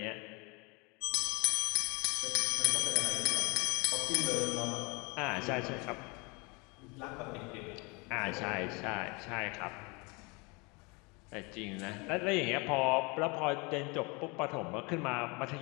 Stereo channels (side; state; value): right; quieter; 28.7 dB